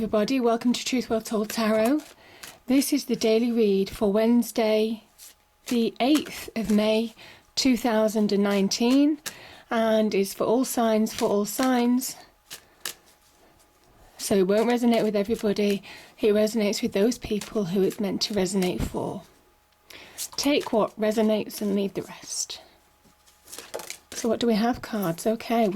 welcome to Truth Well Told Tarot. This is the daily read for Wednesday the 8th of May 2019 and is for all signs, So it won't resonate with everybody, it resonates with those people who it's meant to resonate for. Take what resonates and leave the rest. So what do we have, cards? Okay,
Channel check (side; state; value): both; identical; correlation 1.00